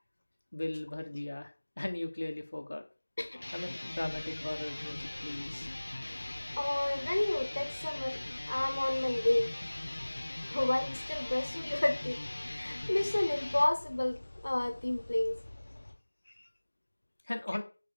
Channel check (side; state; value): both; inverted; correlation -1.00